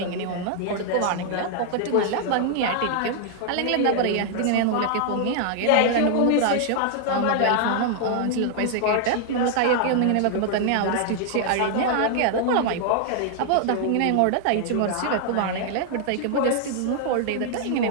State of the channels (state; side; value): different; both; correlation -0.01